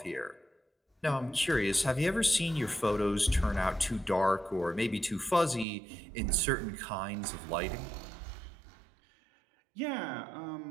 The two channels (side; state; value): left; drops out; at 5.7 s